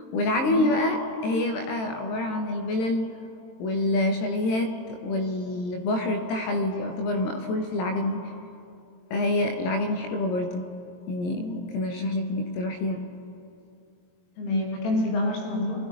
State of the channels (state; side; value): late; right; 22 ms